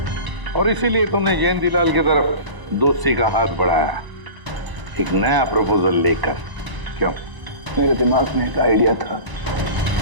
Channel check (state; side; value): late; left; 1.0 ms